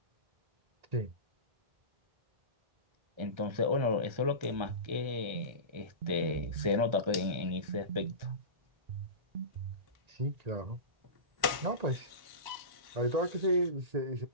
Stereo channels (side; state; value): left; late; 1.1 ms